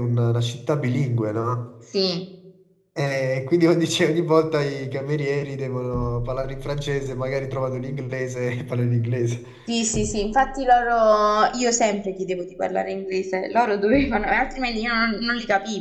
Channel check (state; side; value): identical; both; correlation 1.00